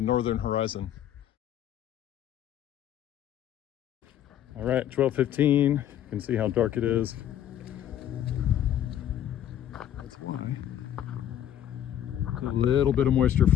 northern horizon. All right, 12:15. You can see how dark it is. That's high. A little bit of moisture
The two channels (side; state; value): right; quieter; 10.8 dB